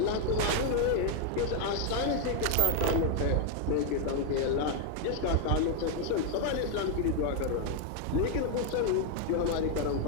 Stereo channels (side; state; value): both; different; correlation 0.00